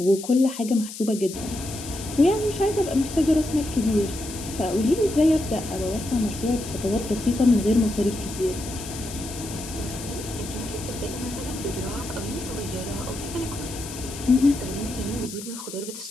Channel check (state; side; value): noise; left; hiss, 11 dB below the sound